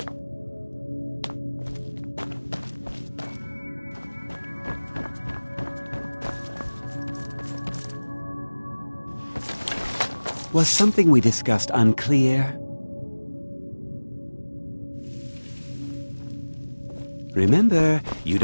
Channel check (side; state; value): both; inverted; correlation -1.00